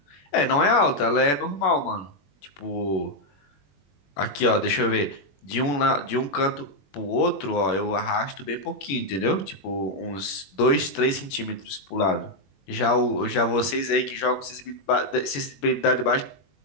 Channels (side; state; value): right; late; 21 ms